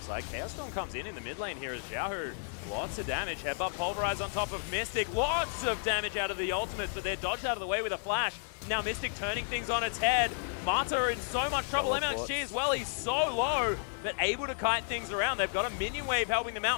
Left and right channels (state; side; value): silent; right; digital silence